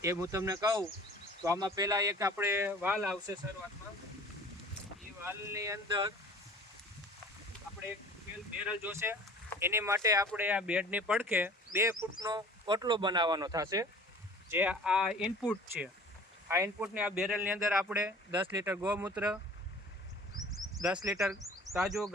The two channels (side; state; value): both; normal; correlation 0.45